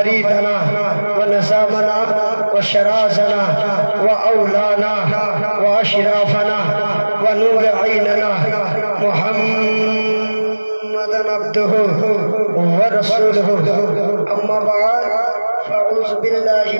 व नज़ामना व शराजना व औलाना व अशराफना व नूर ऐनना मुहम्मदन अब्दुहु व रसूलुहु। अम्मा बाद, फ़अऊज़ु बिल्लाहि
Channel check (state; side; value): inverted; both; correlation -1.00